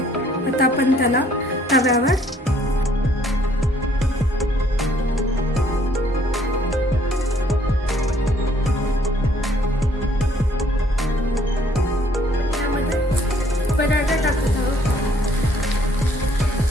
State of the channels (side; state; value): both; normal; correlation 0.63